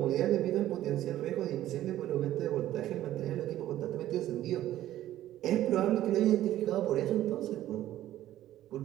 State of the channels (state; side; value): quieter; left; 13.4 dB